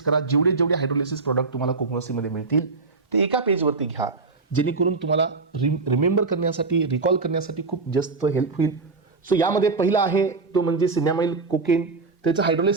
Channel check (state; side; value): quieter; left; 4.1 dB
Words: करा. जेवढे जेवढे हायड्रोलिसिस प्रोडक्ट तुम्हाला कोकोनसीमध्ये मिळतील ते एका पेजवरती घ्या, जेणेकरून तुम्हाला रिमेंबर करण्यासाठी, रिकॉल करण्यासाठी खूप जास्त हेल्प होईल. सो यामध्ये पहिला आहे तो म्हणजे सिन्यामाइल कोकेन. त्याचं